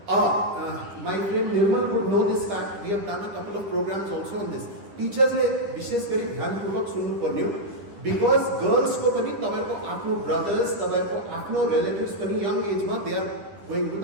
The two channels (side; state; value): left; late; 10 ms